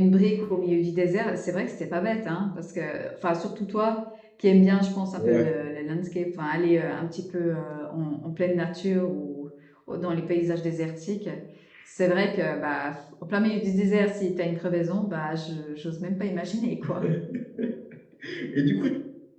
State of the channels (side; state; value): both; identical; correlation 1.00